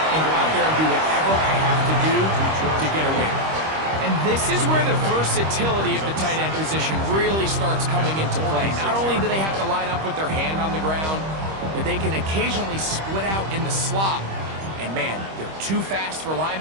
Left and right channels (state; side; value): late; left; 25 ms